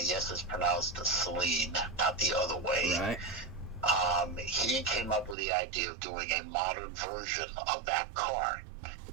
yes, it's pronounced Saleen, not the other way. Right. He came up with the idea of doing a modern version of that car.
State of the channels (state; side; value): drops out; left; at 5.4 s